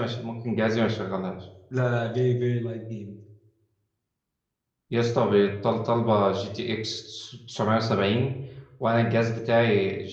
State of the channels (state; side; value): identical; both; correlation 1.00